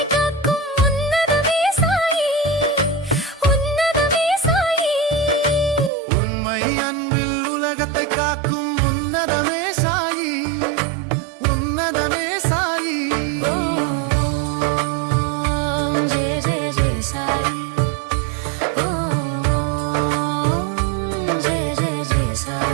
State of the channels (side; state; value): left; drops out; at 5.9 s